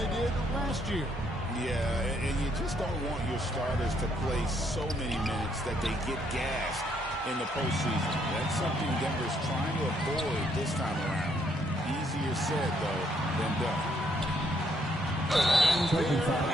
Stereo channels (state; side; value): normal; both; correlation 0.71